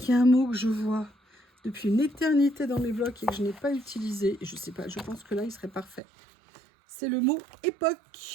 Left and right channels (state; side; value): drops out; left; at 6.0 s